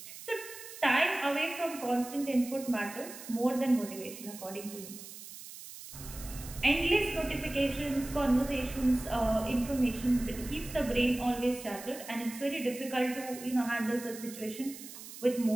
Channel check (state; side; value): noise; right; hiss, 13 dB below the sound